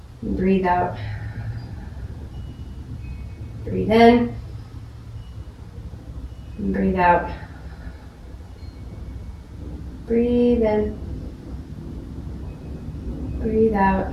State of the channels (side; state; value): both; identical; correlation 1.00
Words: Breathe out. Breathe in. Breathe out. Breathe in. Breathe out.